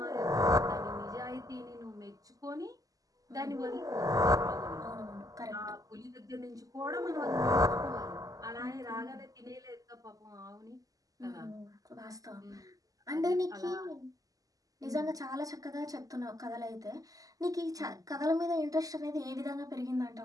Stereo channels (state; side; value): late; left; 0.17 ms